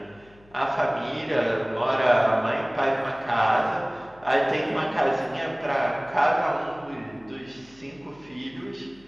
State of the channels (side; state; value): left; noise; hum, 27 dB below the sound